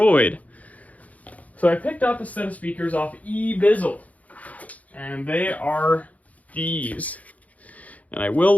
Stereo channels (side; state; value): right; late; 0.072 ms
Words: So I picked up a set of speakers off eBizzle, and they are these. And I